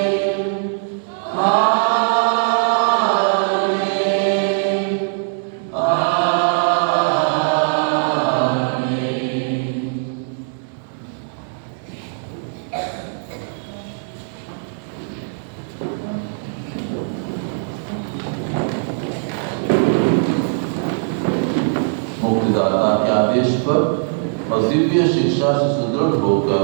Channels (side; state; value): left; silent; digital silence